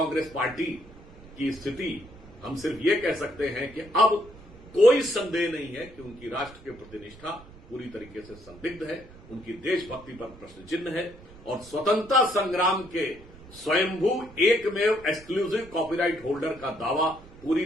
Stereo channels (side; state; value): right; noise; rumble, 20 dB below the sound